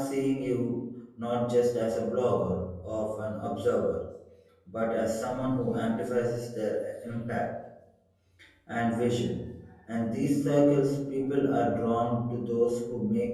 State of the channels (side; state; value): both; identical; correlation 1.00